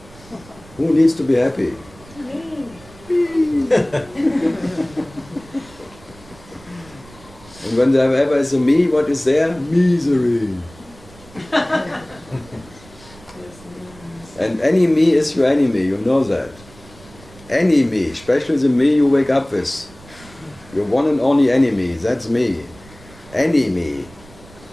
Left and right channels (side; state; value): right; noise; rumble, 23 dB below the sound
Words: Who needs to be happy? Me. And when there ever is a me, what is there? Misery. And any me is your enemy, you know that. Any me, especially the me you wake up with. Your one and only enemy, that's me. Any me